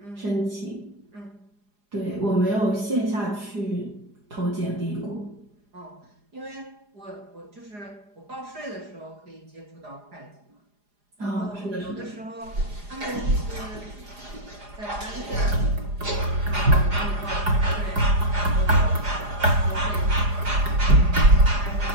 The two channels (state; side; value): late; left; 4.9 ms